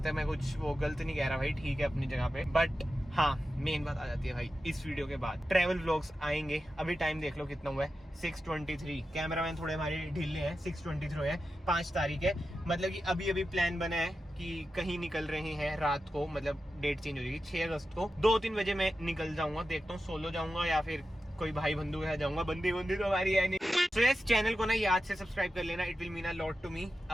है, मैं कुछ वो गलत नहीं कह रहा भाई, ठीक है अपनी जगह पे। बट हाँ मेन बात आ जाती है भाई इस वीडियो के बाद ट्रैवल व्लॉग्स आएंगे। अभी टाइम देख लो कितना हुआ है, 6:23। कैमरामैन थोड़े हमारे ढीले हैं, 6:23 है, 5 तारीख है। मतलब कि अभी अभी प्लान बना है कि कहीं निकल रहे हैं रात को, मतलब डेट चेंज हो जाएगी 6 अगस्त को। 2-3 बजे मैं निकल जाऊंगा, देखता हूँ सोलो जाऊंगा या फिर कोई भाई बंधु के साथ जाऊंगा। बंदी तो हमारी है नहीं। तो यस, चैनल को ना याद से सब्सक्राइब कर लेना, it will mean a lot to me.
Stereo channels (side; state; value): both; normal; correlation 0.91